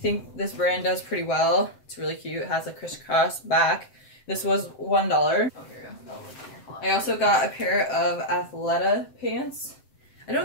this brand does pretty well. It's really cute. It has a crisscross back. This was $1. Oh, here you go. I also got a pair of Athleta pants. I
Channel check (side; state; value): right; late; 7.7 ms